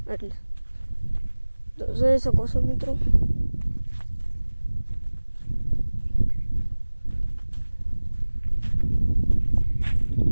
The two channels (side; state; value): both; inverted; correlation -1.00